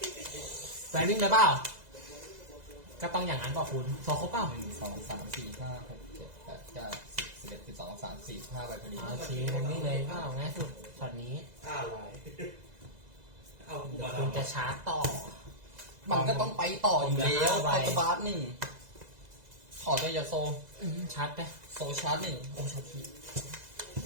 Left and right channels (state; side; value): late; left; 2.0 ms